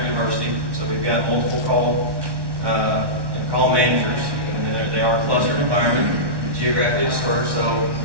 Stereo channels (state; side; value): late; left; 1.1 ms